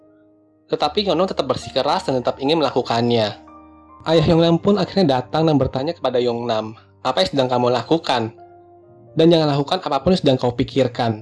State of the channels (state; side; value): identical; both; correlation 1.00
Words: Tetapi Yongnam tetap bersikeras dan tetap ingin melakukannya. Ayah Yongnam pun akhirnya datang dan bertanya kepada Yongnam, "Apa yang sedang kamu lakukan? Dan jangan lakukan apapun yang sedang kau